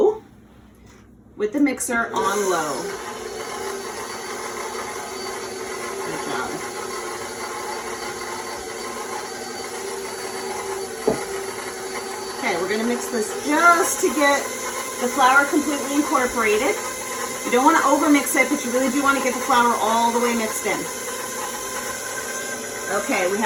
with the mixer on low. Good job. Okay, we're going to mix this just to get the flour completely incorporated. You don't want to overmix it, but you really do want to get the flour all the way mixed in. Okay, we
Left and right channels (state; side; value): identical; both; correlation 1.00